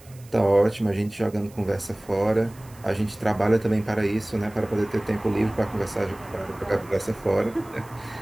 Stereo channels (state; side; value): noise; right; hiss, 25 dB below the sound